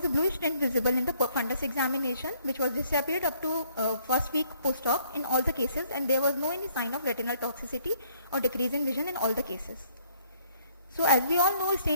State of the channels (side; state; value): both; inverted; correlation -0.63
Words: a bluish tint visible in the fundus examination, which was disappeared up to first week post-op in all the cases, and there was no any sign of retinal toxicity or decrease in vision in all the cases. So as we all know,